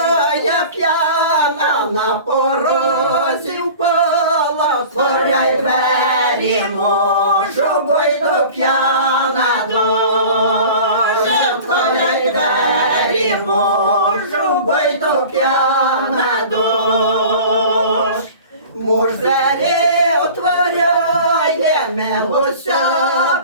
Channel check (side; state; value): both; inverted; correlation -0.41